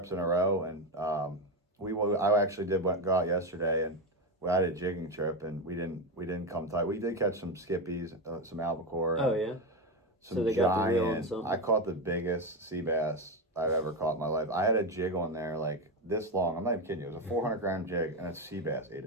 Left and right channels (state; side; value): normal; both; correlation 0.14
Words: in a row, and I actually go out yesterday, and we had a jigging trip, and we didn't come tight. We did catch some skippies, some albacore. Oh yeah. Some giant. I caught the biggest sea bass I've ever caught in my life. I had a jig on there this long. I'm not even kidding you. It was a 400-gram jig, and a sea bass ate